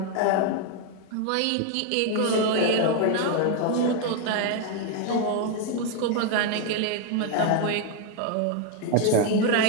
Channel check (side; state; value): both; different; correlation 0.01